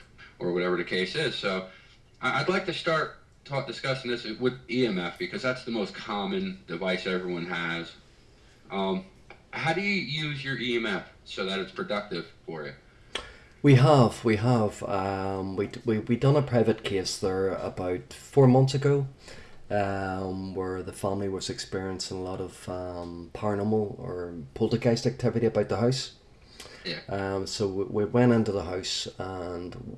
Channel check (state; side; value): identical; both; correlation 1.00